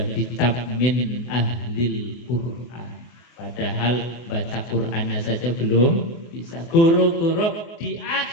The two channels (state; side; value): late; right; 24 ms